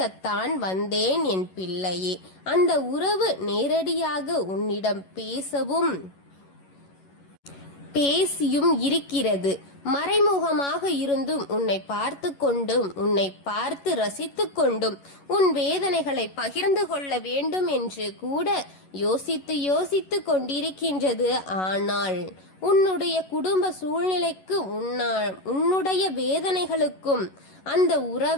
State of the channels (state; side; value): late; right; 11 ms